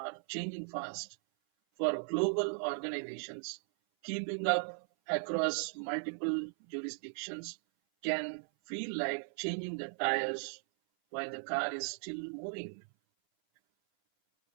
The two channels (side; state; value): left; silent; 53 dB below the other